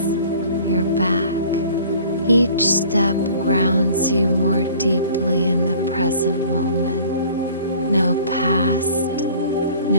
your back. Each step grounds you more deeply in the present moment. No past,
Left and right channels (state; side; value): inverted; both; correlation -0.50